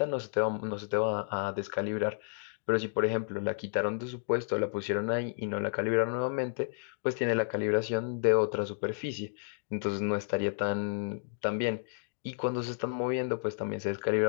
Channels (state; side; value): silent; right; digital silence